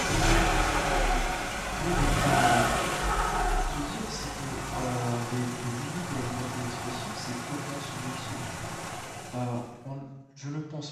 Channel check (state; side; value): identical; both; correlation 1.00